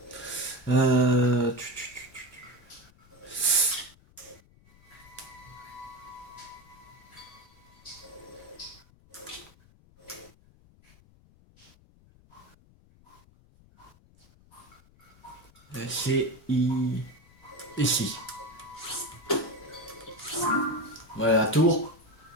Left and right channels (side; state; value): left; noise; rumble, 27 dB below the sound